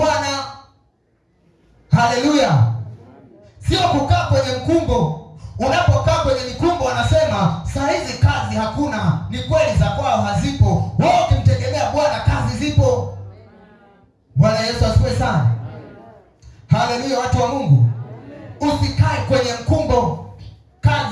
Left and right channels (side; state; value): both; identical; correlation 1.00